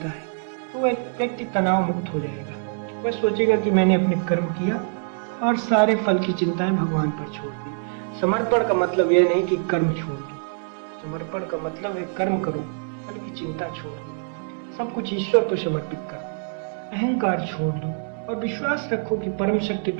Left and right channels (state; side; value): silent; left; 62 dB below the other